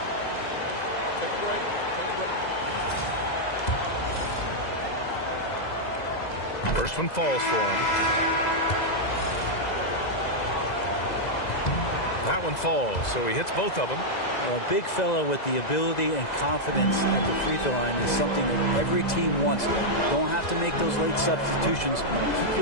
Take a break. First one falls for him. That one falls, so he hits both of them. Well, a big fellow with the ability and confidence at the free throw line is something that every team wants. Don't have to make those late substitutions. Keep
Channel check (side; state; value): right; late; 2.0 ms